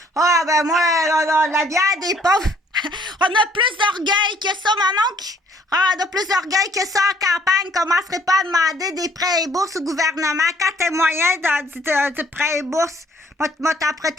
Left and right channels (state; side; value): normal; both; correlation 0.61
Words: Ah, ben moi, la bière des pauvres... On a plus d'orgueil que ça, mon oncle. Ah, on a plus d'orgueil que ça en campagne. Commencerait pas à demander des prêts et bourses au gouvernement quand t'es moyen de prêts et bourses. Moi, t'as